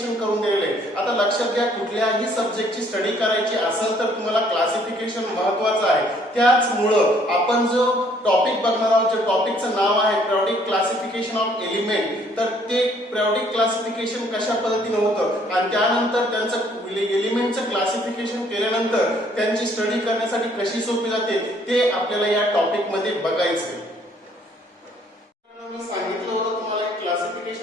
करून दिलेले आहे। आता लक्षात घ्या, कुठल्याही सब्जेक्टची स्टडी करायची असेल तर तुम्हाला क्लासिफिकेशन महत्त्वाचं आहे। त्याचमुळं आपण जो टॉपिक बघणार आहोत, जे टॉपिकचं नाव आहे पिरियोडिक क्लासिफिकेशन ऑफ एलिमेंट, तर ते पिरियोडिक क्लासिफिकेशन कशा पद्धतीने होतं आणि त्यानंतर त्यांचं एलिमेंटचं क्लासिफिकेशन केल्यानंतर त्यांची स्टडी करण्यासाठी कशी सोपी जाते ते आपल्याला या टॉपिक मध्ये बघायचं आहे। मी सांगितलं होतं तुम्हाला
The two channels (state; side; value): normal; both; correlation 0.63